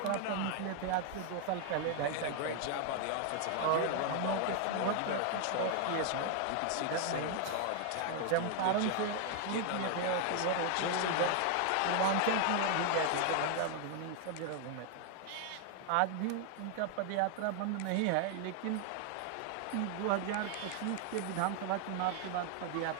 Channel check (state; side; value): different; both; correlation 0.00